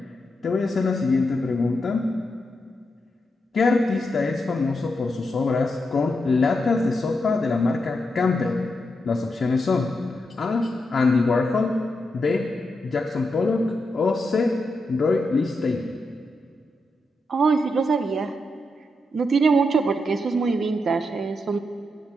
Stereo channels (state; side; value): normal; both; correlation 0.85